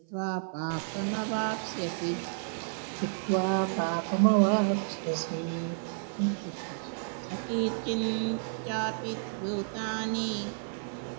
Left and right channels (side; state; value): left; silent; 57 dB below the other